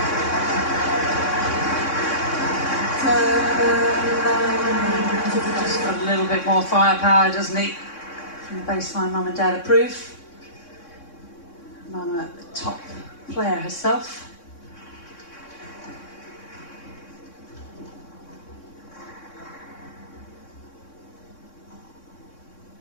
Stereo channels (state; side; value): late; right; 3.6 ms